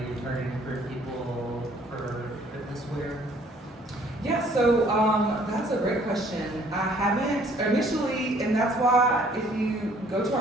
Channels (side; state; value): both; normal; correlation 0.60